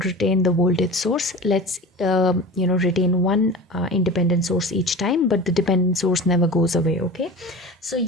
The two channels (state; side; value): normal; both; correlation 0.33